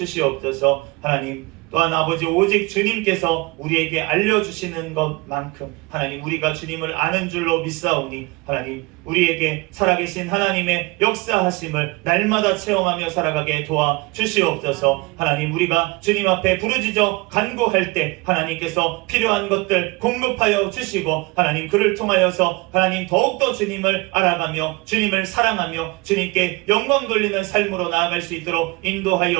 하나님 또한 아버지 오직 주님께서 우리에게 알려주시는 것만큼 하나님 우리가 주님을 아는 줄로 믿사오니 하나님 우리에게 살아계신 하나님의 역사하심을 날마다 체험하며 살아가게 도와 주시옵소서. 하나님 우리가 주님 앞에 부르짖어 간구할 때 하나님께서 필요한 것들 공급하여 주시고 하나님 그를 통하여서 하나님 더욱더 주님을 알아가며 주님을 사랑하며 주님께 영광 돌리는 삶으로 나아갈 수 있도록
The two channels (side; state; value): left; quieter; 24.6 dB